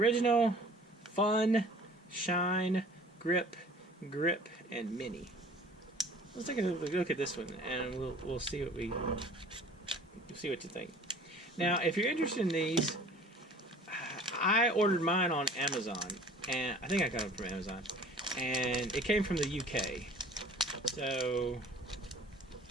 fun, shine, grip, and mini. Let's take a look at this one, and we'll see what you think. Now, if you're interested in these, I ordered mine on Amazon, and I think I got them from Amazon, and it came from the UK. So,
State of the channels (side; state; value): both; normal; correlation 0.48